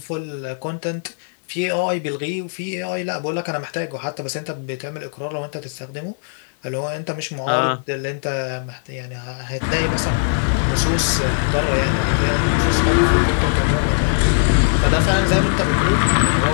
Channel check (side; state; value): right; silent; 55 dB below the other